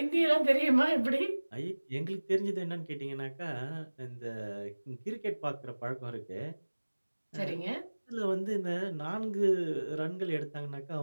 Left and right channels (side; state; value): both; inverted; correlation -1.00